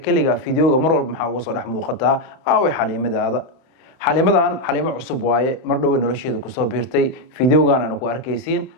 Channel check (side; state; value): right; late; 31 ms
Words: fiidiyooga mar walba maxaa uga soo dhex muuqataa aaway xaliimadaada xaliimadan xaliimo cusub waaye mar dhow nolosheeda ku soo biirtay fiidiyoogan aan ku arkaysiin